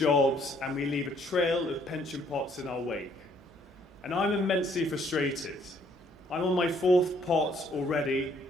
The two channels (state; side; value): normal; both; correlation 0.65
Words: and we leave a trail of pension pots in our wake. And I'm immensely frustrated. I'm on my 4th pot already